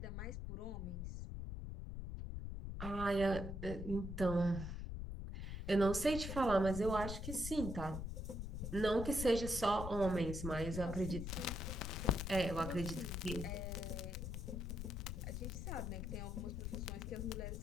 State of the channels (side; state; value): left; noise; rumble, 5 dB below the sound